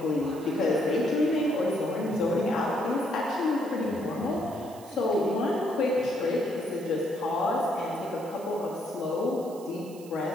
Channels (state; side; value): noise; right; hiss, 21 dB below the sound